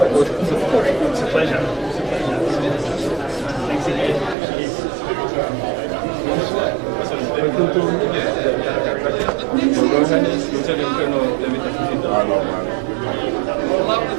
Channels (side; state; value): left; drops out; at 4.4 s